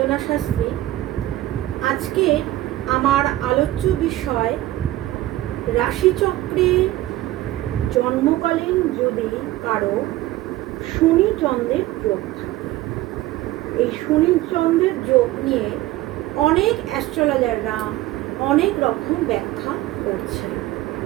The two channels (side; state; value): left; quieter; 16.1 dB